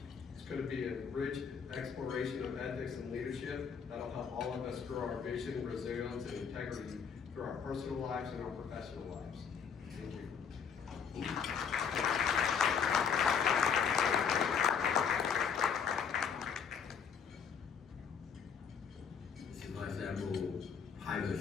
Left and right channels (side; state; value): right; quieter; 6.8 dB